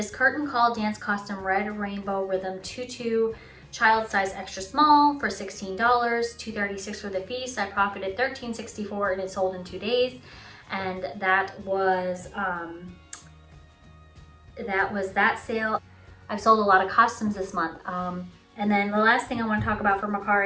curtain call dance costume red rainbow rhythm tutu child size extra small for $16, $2.36 for the fee, so I profited $13.64, and it sold in 2 days. And that was that sale. I've sold a lot of costumes this month. And then the last thing I want to talk about for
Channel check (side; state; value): both; identical; correlation 1.00